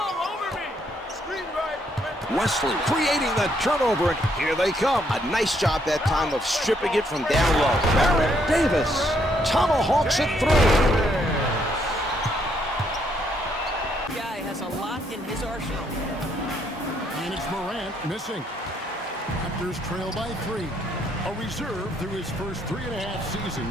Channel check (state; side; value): normal; both; correlation 0.72